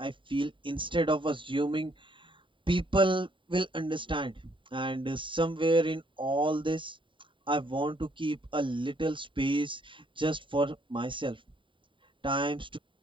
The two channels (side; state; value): left; late; 0.24 ms